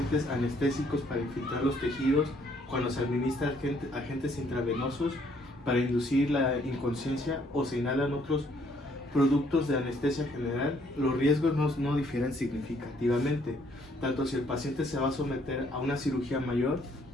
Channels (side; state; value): both; normal; correlation 0.66